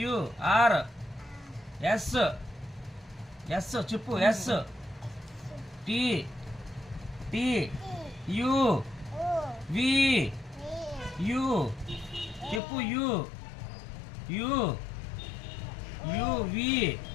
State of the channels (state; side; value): drops out; right; at 12.6 s